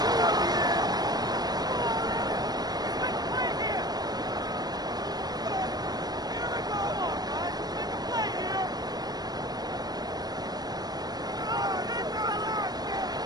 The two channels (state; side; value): late; left; 0.19 ms